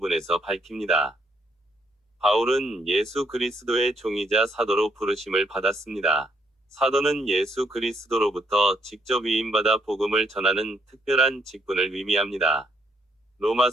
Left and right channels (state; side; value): normal; both; correlation 0.72